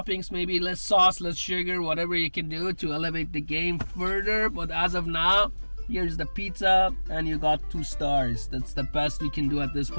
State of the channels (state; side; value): inverted; both; correlation -1.00